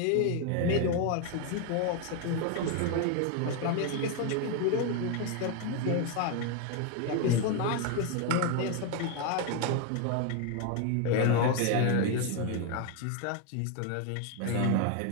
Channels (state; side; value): different; both; correlation 0.01